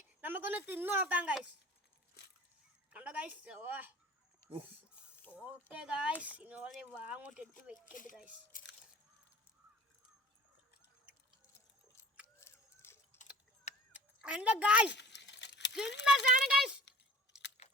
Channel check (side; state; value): both; normal; correlation 0.44